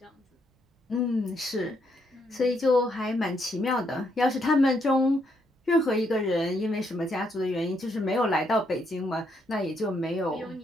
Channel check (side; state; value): both; normal; correlation 0.75